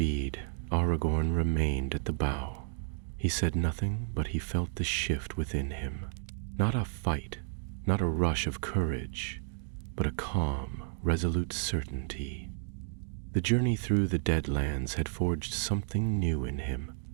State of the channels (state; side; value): silent; left; digital silence